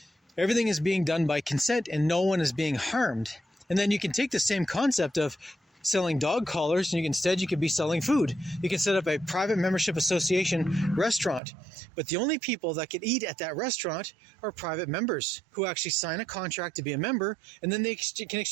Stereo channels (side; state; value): left; drops out; at 11.4 s